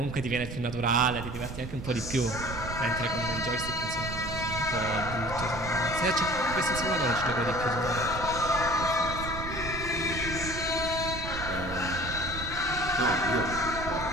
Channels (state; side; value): noise; right; rumble, 8 dB below the sound